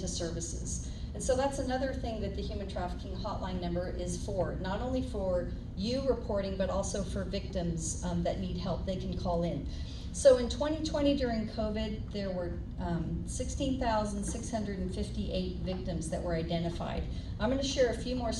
services? And so that's another thing that the human trafficking hotline number is for, not only for you reporting, but also for victims that need help. They can call in. So in 2020 during COVID, there were 16,658 victims that were identified. I'm going to share a few more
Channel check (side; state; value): both; identical; correlation 1.00